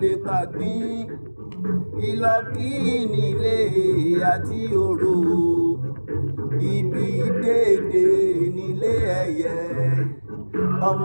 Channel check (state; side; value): inverted; both; correlation -1.00